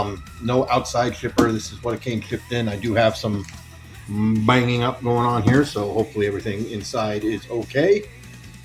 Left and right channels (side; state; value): both; identical; correlation 1.00